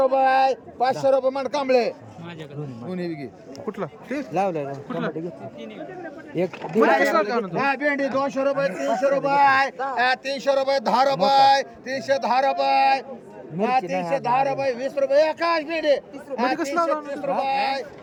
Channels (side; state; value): both; identical; correlation 1.00